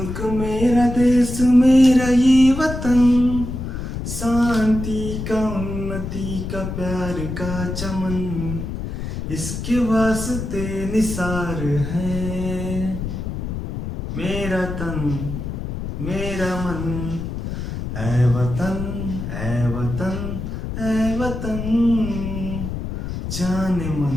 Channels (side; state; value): left; noise; rumble, 5 dB below the sound